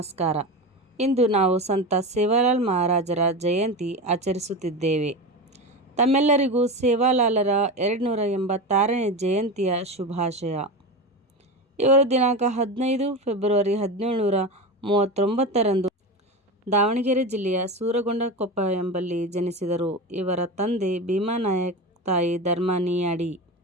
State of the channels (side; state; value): both; normal; correlation 0.23